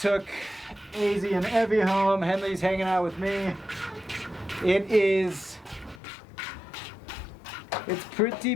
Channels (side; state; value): right; drops out; at 6.0 s